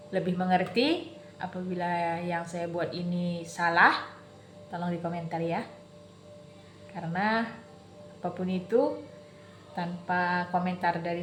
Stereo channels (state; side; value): identical; both; correlation 1.00